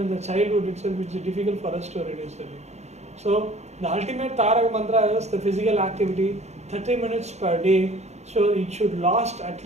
the childhood itself, it's difficult for us to reduce the weight. So the ultimate Tarak mantra is the physical activity, 30 minutes per day. So it should last at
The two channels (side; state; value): left; late; 0.32 ms